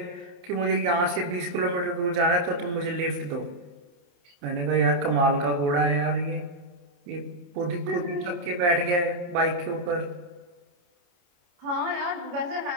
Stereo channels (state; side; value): late; left; 28 ms